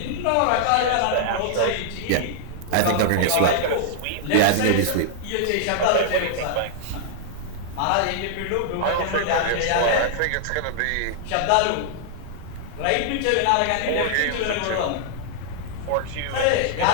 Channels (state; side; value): different; both; correlation -0.01